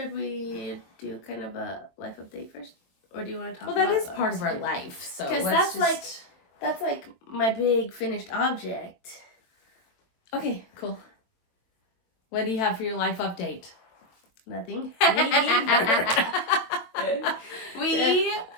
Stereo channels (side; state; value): right; late; 22 ms